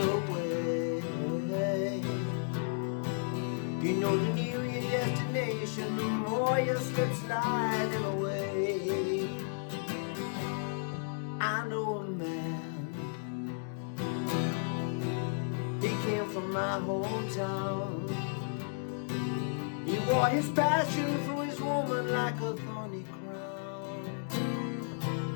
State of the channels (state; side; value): silent; right; digital silence